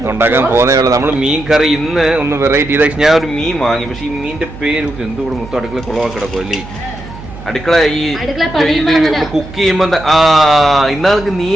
ഉണ്ടാക്കാൻ പോകുന്നേ ഉള്ളൂ. നമ്മൾ മീൻ കറി ഇന്ന് ഒന്ന് വെറൈറ്റി ചെയ്ത. ഞാൻ ഒരു മീൻ വാങ്ങി, പക്ഷെ ഈ മീനിന്റെ പേര് എന്തുകൂടെ മൊത്തം അടുക്കള കുളവാക്കി കിടക്കും അല്ലേ. അടുക്കള ഈ കുക്ക് ചെയ്യുമ്പോ ഇന്നാൾക്ക്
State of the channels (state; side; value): noise; right; hum, 14 dB below the sound